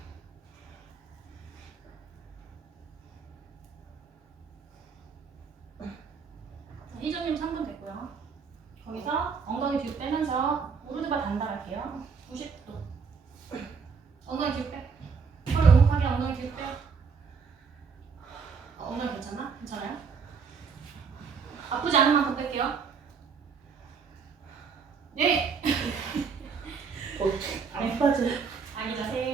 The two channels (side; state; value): left; quieter; 5.7 dB